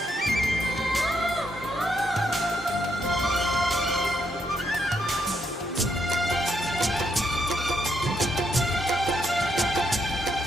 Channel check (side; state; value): both; normal; correlation 0.77